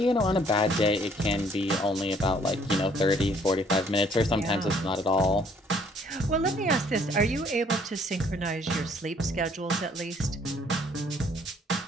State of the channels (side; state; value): both; normal; correlation 0.62